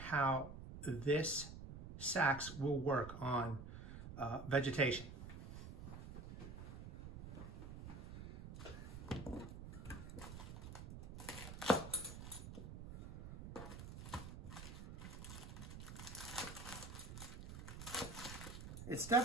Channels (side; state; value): right; noise; rumble, 10 dB below the sound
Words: this sax will work on vegetation. It's